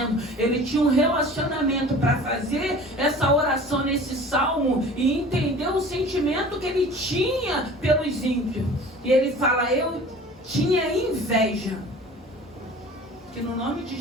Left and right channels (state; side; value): normal; both; correlation 0.43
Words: ele tinha um relacionamento para fazer essa oração nesse salmo e entender o sentimento que ele tinha pelos ímpios. E ele fala, eu tinha inveja. Que no nome de